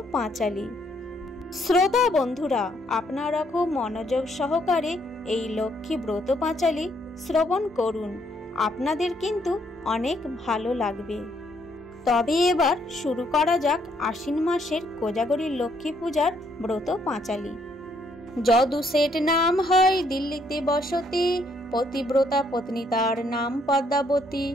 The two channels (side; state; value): both; normal; correlation 0.70